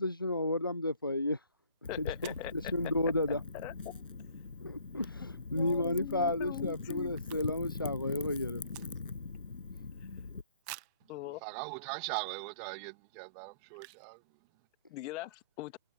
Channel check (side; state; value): both; inverted; correlation -0.59